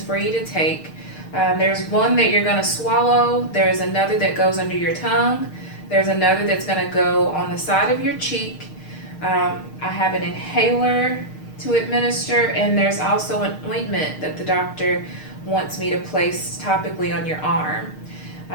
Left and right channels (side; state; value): right; late; 6.5 ms